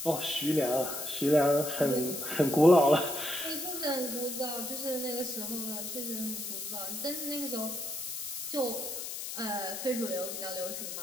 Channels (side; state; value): left; noise; hiss, 6 dB below the sound